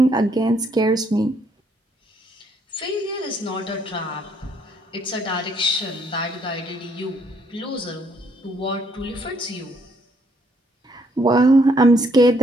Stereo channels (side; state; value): both; normal; correlation 0.69